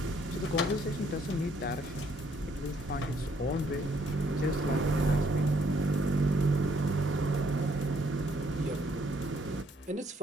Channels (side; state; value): both; normal; correlation 0.67